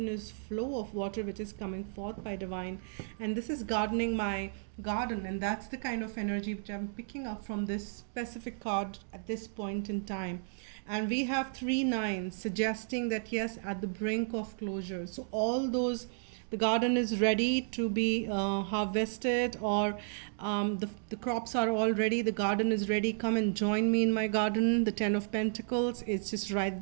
flow of water which is coming forth by divine, and this is gardening my garden. And that's the kind of energy which I'm picking up from this specific card at this point in time. And we have three nines suggesting that yes, at the brink of closure. So all those, the garden is ready to be harvested, or the crops are all ready, the garden is ready, come and join me in my garden. The Ten of Pentacles is just right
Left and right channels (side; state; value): left; silent; digital silence